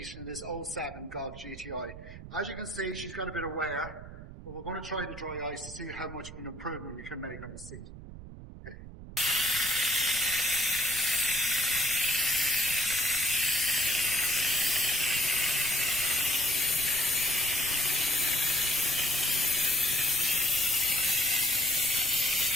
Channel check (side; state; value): right; noise; rumble, 14 dB below the sound